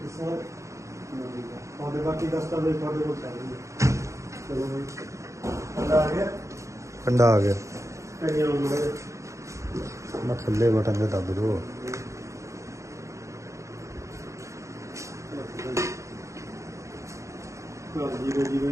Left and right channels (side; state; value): left; late; 0.15 ms